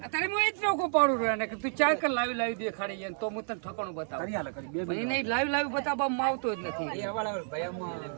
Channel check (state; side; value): silent; left; digital silence